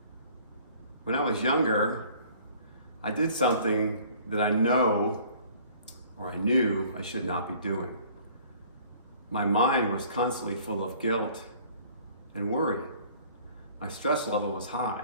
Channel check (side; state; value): both; inverted; correlation -0.53